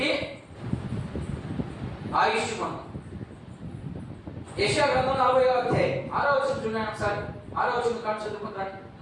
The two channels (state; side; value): identical; both; correlation 1.00